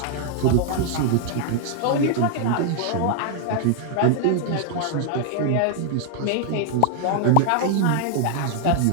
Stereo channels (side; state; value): both; different; correlation 0.00